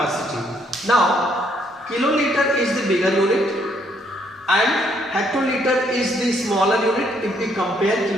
Now kiloliter is the bigger unit and hectoliter is the smaller unit if we compare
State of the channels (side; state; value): both; normal; correlation 0.70